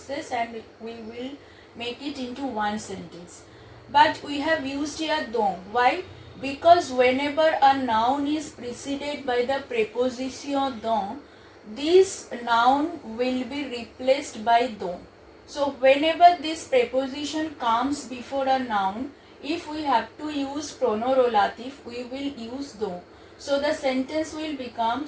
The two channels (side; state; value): both; identical; correlation 1.00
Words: and we will make it into one sentence. But we have used here dont. Why? Because whenever a noun is preceded by the preposition dont, this noun will be replaced by dont. So whenever this preposition comes before a noun, if we have to use pronorolatif, we will use dont. So the sentence will become